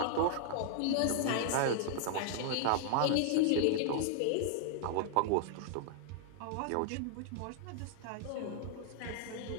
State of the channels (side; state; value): both; different; correlation -0.01